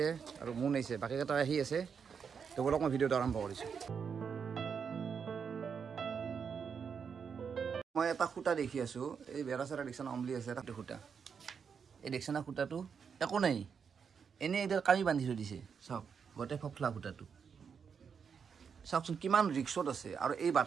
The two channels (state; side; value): quieter; left; 6.5 dB